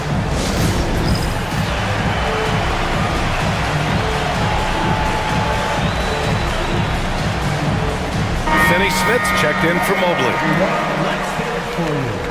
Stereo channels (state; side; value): identical; both; correlation 1.00